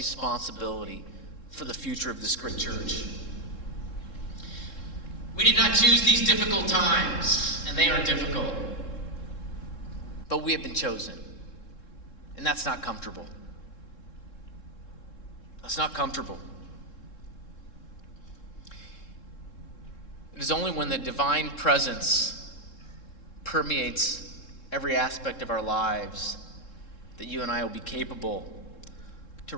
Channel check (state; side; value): late; right; 3.7 ms